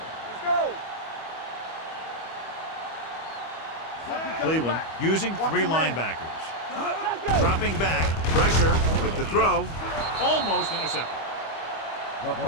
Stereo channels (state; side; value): late; right; 25 ms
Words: Let's go. Cleveland using three linebackers. Dropping back, pressure with the throw, almost intercepted.